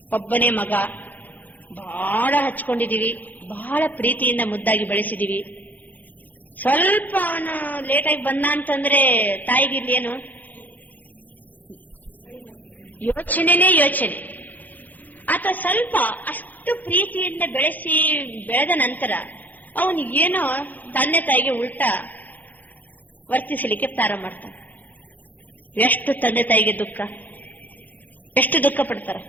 ಒಬ್ಬನೇ ಮಗ, ಬಹಳ ಹಚ್ಕೊಂಡಿದೀವಿ, ಬಹಳ ಪ್ರೀತಿಯಿಂದ ಮುದ್ದಾಗಿ ಬೆಳೆಸಿದೀವಿ. ಸ್ವಲ್ಪ ಅವನು ಲೇಟಾಗಿ ಬಂದ ಅಂತಂದ್ರೆ ತಾಯಿಗೆ ಇಲ್ಲೇನು ಯೋಚನೆ, ಅಥವಾ ಸ್ವಲ್ಪ ಅಷ್ಟು ಪ್ರೀತಿಯಿಂದ ಬೆಳೆದ ನಂತರ ಅವನು ಏನೋ ತಂದೆ ತಾಯಿಗೆ ಉಲ್ಟಾ ವರ್ತಿಸಲಿಕ್ಕೆ ಪ್ರಾರಂಭ ಮಾಡ್ತಾನೆ. ಎಷ್ಟು ತಂದೆ ತಾಯಿಗೆ ದುಃಖ, ಎಷ್ಟು ದುಃಖ ಪಡ್ತಾರ.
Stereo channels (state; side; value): late; right; 0.083 ms